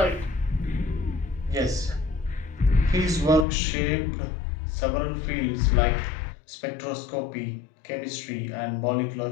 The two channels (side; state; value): right; drops out; at 3.5 s